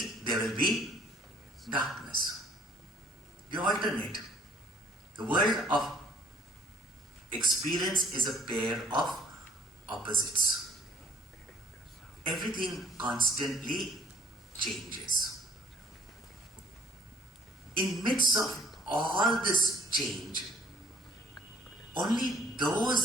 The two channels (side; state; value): both; normal; correlation 0.58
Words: there will be darkness. They alternate. The world of experience is a pair of opposites. Everything constantly changes. In midst of all this change, only